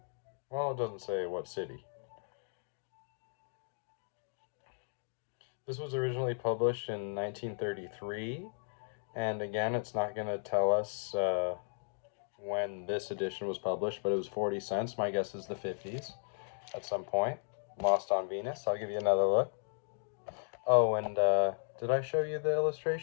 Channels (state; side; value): silent; right; digital silence